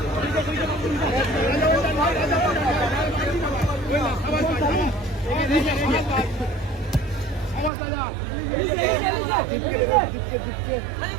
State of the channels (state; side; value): drops out; left; at 7.7 s